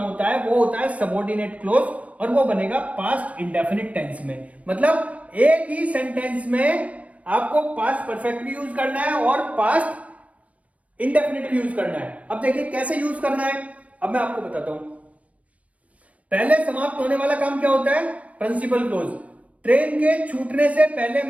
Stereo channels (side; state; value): left; late; 0.067 ms